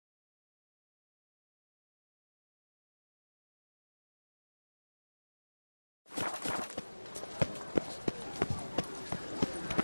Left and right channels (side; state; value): both; inverted; correlation -1.00